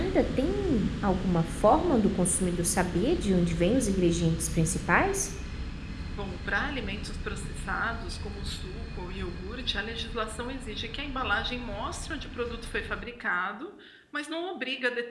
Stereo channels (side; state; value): both; identical; correlation 1.00